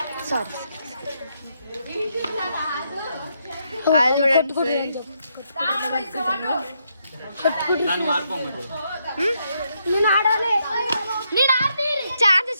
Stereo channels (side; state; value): both; inverted; correlation -0.78